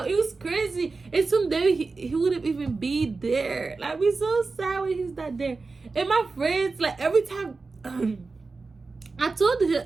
It was crazy. And someday he wouldn't even be there. Like, we're so sad when he's not there. And my friends, like, every time I told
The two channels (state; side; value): quieter; left; 4.0 dB